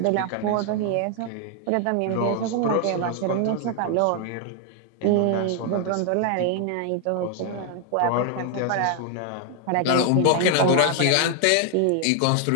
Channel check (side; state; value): both; different; correlation 0.00